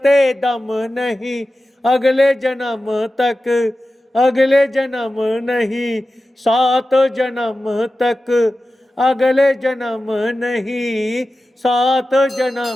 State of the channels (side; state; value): both; normal; correlation 0.94